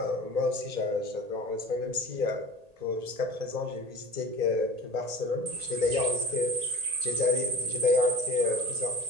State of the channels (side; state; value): left; late; 1.8 ms